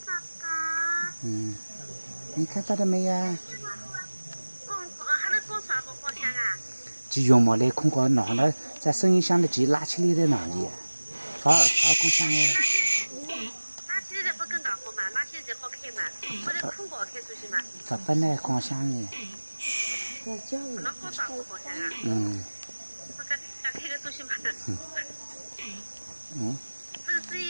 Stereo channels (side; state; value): both; inverted; correlation -1.00